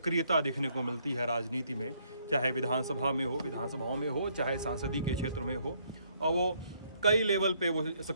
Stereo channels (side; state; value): both; inverted; correlation -0.69